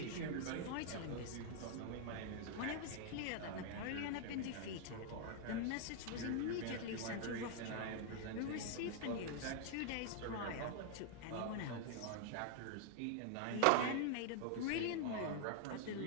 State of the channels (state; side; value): different; both; correlation 0.00